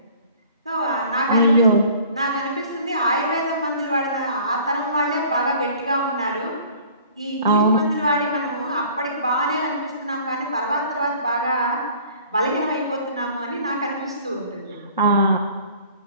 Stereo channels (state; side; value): inverted; both; correlation -0.50